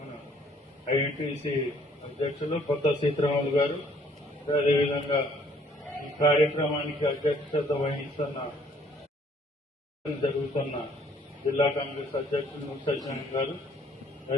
ఐఎన్టీసీ అధ్యక్షులు కొత్త సీతారాములు గారు, అదేవిధంగా ఈ కార్యక్రమానికి అధ్యక్షత వహిస్తున్న జరుగుతున్న జిల్లా కాంగ్రెస్ అధ్యక్షులు సత్యనారాయణ గారు,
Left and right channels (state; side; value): normal; both; correlation 0.62